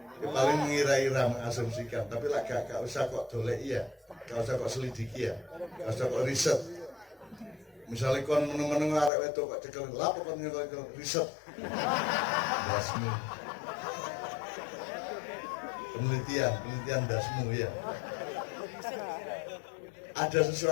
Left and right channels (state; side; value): drops out; right; at 9.1 s